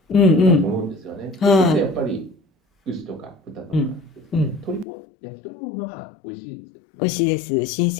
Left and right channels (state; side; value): drops out; right; at 4.9 s